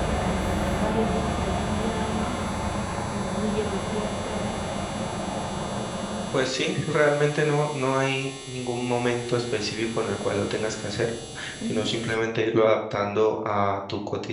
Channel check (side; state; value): both; identical; correlation 1.00